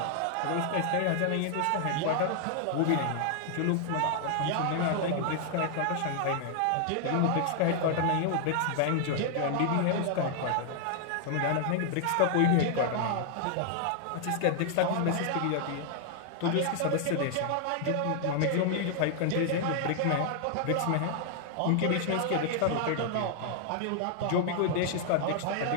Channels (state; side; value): different; both; correlation 0.00